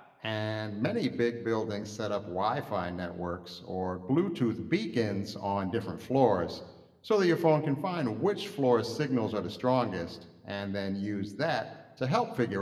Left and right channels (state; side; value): identical; both; correlation 1.00